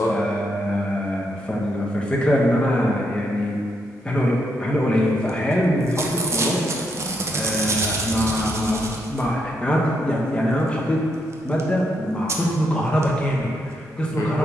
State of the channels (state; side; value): normal; both; correlation 0.78